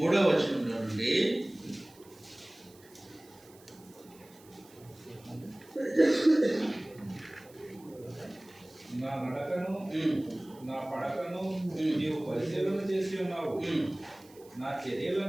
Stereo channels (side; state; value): right; noise; hiss, 26 dB below the sound